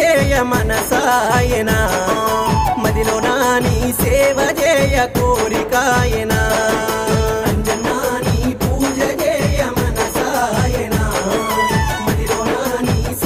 మనసాయనా మదిలో నాని సేవ చేయ కోరికాయనా అంజన్నా నీ పూజ చేయ మనసాయనా మదిలో నాని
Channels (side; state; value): both; identical; correlation 1.00